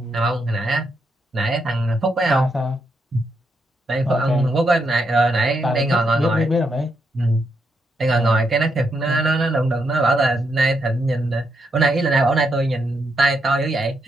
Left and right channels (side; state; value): both; normal; correlation 0.80